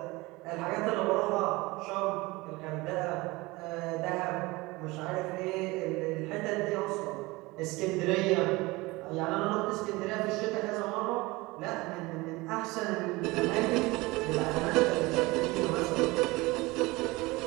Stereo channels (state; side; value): quieter; left; 22.2 dB